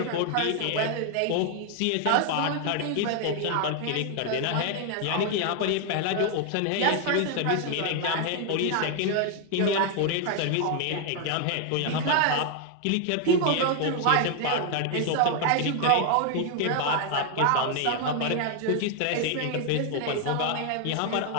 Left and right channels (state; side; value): different; both; correlation 0.00